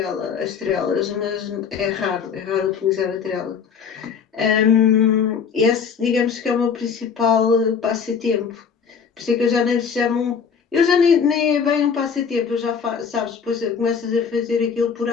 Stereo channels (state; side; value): quieter; right; 6.5 dB